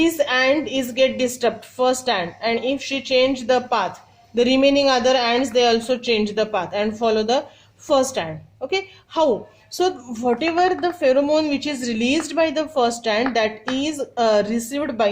ant is get disturbed, first ant, and if she change the path, the remaining other ants they also change the path and follow the first ant. Okay, how? So whatever the pheromone which is released by the first ant, that is received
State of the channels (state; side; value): identical; both; correlation 1.00